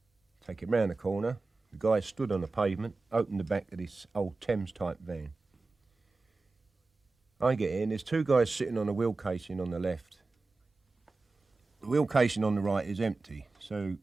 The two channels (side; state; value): left; quieter; 3.7 dB